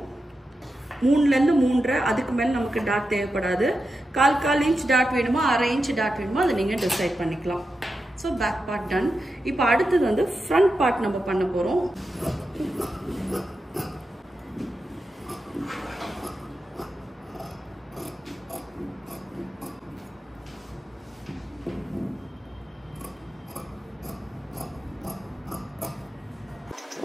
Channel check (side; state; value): both; normal; correlation 0.89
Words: 3லேருந்து 3.5, அதுக்கு மேலே நமக்கு டாட் தேவைப்படாது. 1/4 inch டாட் வேணுமோ 1/2 inch டாட் வேணுமோ அதை நீங்கள் டிசைட் பண்ணிக்கலாம். So back part done. இப்போ அடுத்தது வந்து ஃப்ரண்ட் பார்ட் நம்ம பண்ண போகிறோம்.